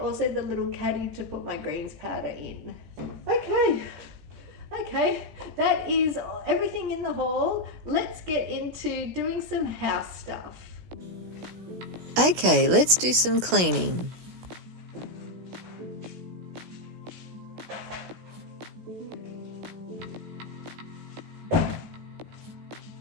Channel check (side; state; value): left; late; 17 ms